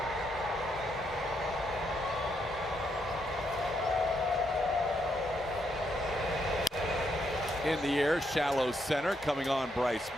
In the air, shallow center, coming on Bryce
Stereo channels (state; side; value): normal; both; correlation 0.78